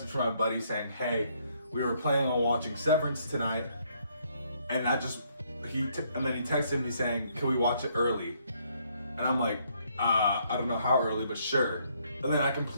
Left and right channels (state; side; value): inverted; both; correlation -0.70